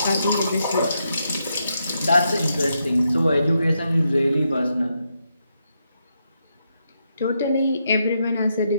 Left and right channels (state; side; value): inverted; both; correlation -0.82